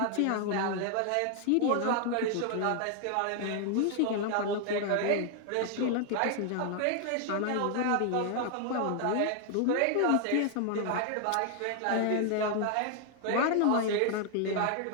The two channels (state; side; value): different; both; correlation 0.00